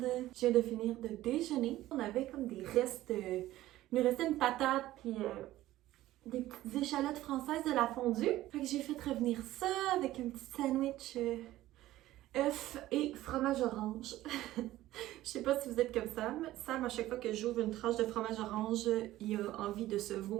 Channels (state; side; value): quieter; left; 15.4 dB